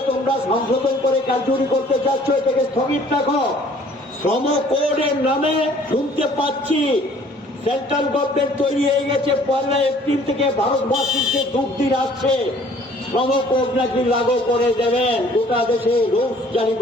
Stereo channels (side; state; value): both; normal; correlation 0.55